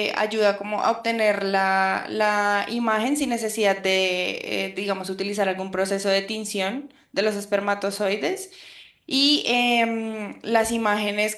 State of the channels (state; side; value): identical; both; correlation 1.00